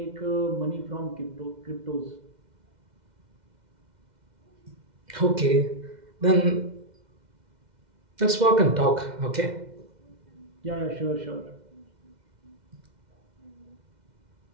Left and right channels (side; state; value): left; late; 2.1 ms